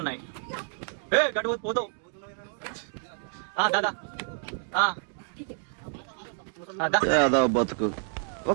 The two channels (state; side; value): silent; left; 56 dB below the other